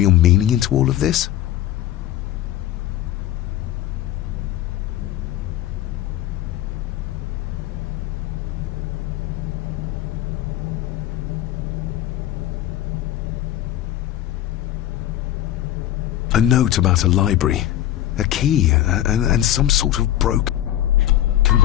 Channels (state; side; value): quieter; right; 12.8 dB